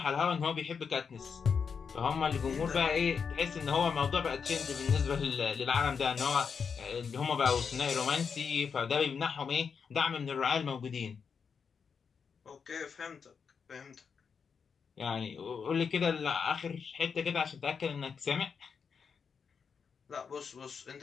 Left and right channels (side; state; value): right; quieter; 6.1 dB